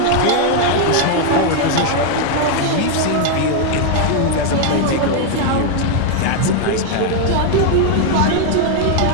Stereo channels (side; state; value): both; different; correlation 0.00